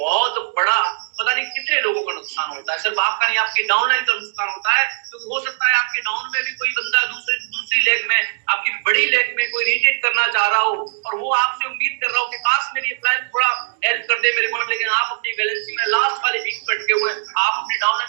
बड़ा, पता नहीं कितने लोगों का नुकसान होता है, सिर्फ आपका नहीं, आपके डाउनलाइन का नुकसान होता है। क्योंकि हो सकता है आपके डाउन में भी कोई बंदा दूसरी लेग में, आपकी बड़ी लेग में कोई रिट्रीट करना चाह रहा हो और वो आपसे उम्मीद कर रहा हो कि काश मेरी प्लान थोड़ा हेल्प कर दे मेरे को, लेकिन आप अपनी बैलेंसिंग में लास्ट वाले वीक पे अटके हुए हैं। आप अपने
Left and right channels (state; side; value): silent; left; digital silence